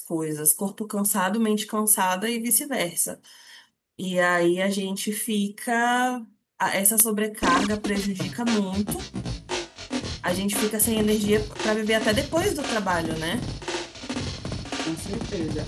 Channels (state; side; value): identical; both; correlation 1.00